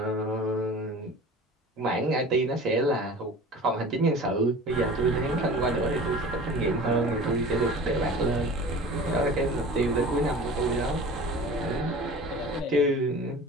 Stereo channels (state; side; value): normal; both; correlation 0.39